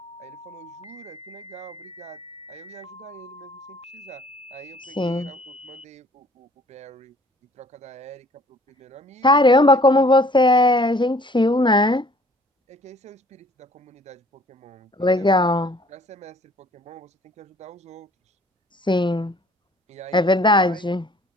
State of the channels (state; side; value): normal; both; correlation 0.56